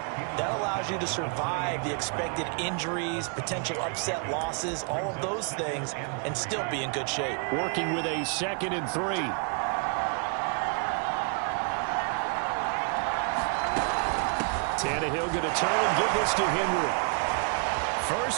that allows you to survive the expected injuries, potential upset losses, all of those things, and still be in good shape. Working with a 2nd and 3. Tannehill going to turn and give this to Henry.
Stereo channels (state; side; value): quieter; left; 40.0 dB